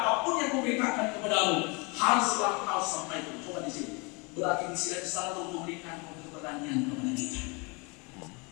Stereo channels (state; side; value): quieter; right; 29.9 dB